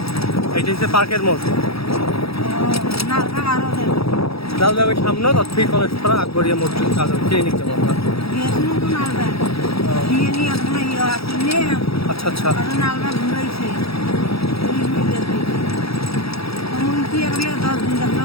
এটা হচ্ছে পার্কের মোড়। যাও যাবে সামনে তৎফি কলেজ পাড়া আকবরিয়া মোড় ক্লিনিক যাবো আমরা। আচ্ছা আচ্ছা,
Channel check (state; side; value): late; right; 0.77 ms